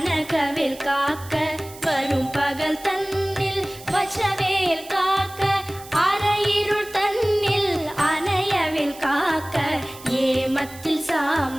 காக்க வரும் பகல் தன்னில் வச்சவேல் காக்க அரையிருள் தன்னில் அணையவேல் காக்க ஏமத்தில்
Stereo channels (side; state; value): right; noise; hiss, 18 dB below the sound